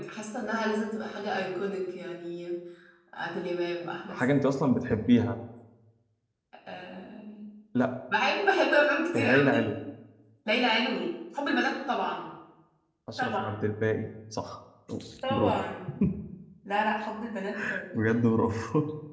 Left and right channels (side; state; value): both; identical; correlation 1.00